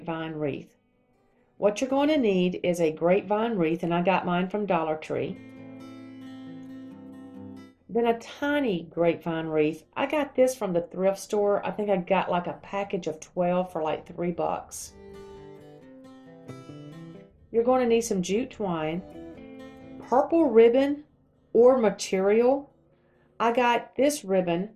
wreath. What you're going to need is a grapevine wreath, and I got mine from Dollar Tree. Then a tiny grapevine wreath. I got this from the thrift store. I think I got like a package of 12 for like $3. You're going to need some jute twine, purple ribbon or material. I got this ribbon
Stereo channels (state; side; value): identical; both; correlation 1.00